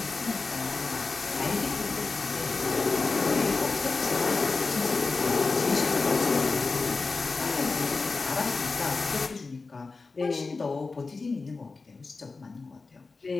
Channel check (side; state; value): right; quieter; 4.0 dB